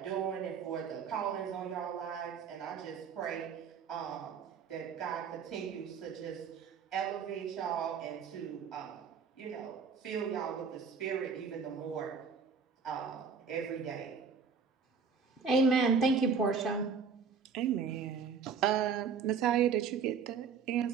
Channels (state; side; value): quieter; left; 6.0 dB